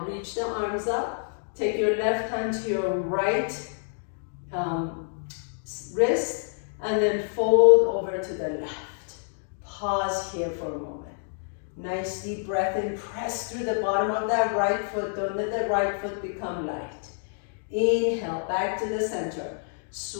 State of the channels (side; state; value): right; silent; 60 dB below the other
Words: reach the arms up. Take your left hand to your right wrist and then fold over to the left. Pause here for a moment. Nice deep breath in. Press through the bottom of that right foot. Don't let the right foot become light. Inhale, back to the center.